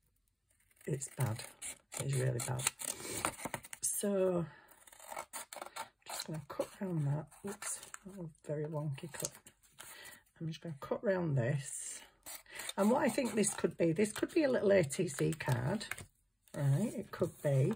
It's bad. It's really bad. So, just going to cut around that. Oops, oh, very wonky cut. I'm just going to cut around this. And what I think this could be a little ATC card. Right, it could be.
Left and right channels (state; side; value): identical; both; correlation 1.00